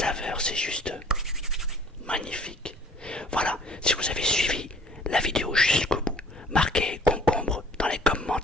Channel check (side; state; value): both; normal; correlation 0.53